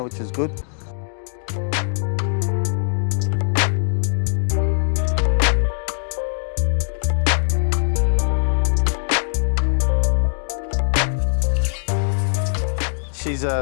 which is good. She's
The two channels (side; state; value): right; silent; digital silence